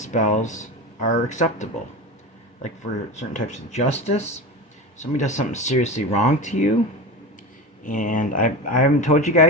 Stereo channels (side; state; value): both; normal; correlation 0.26